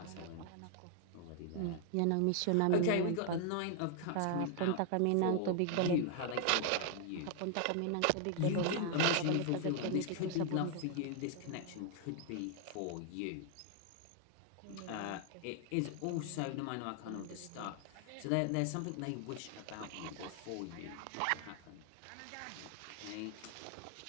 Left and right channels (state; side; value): different; both; correlation 0.00